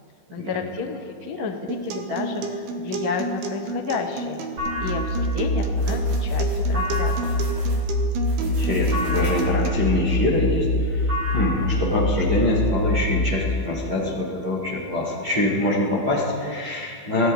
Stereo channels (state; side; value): late; left; 15 ms